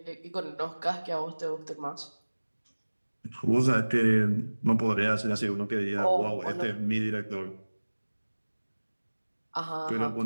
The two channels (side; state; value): both; inverted; correlation -1.00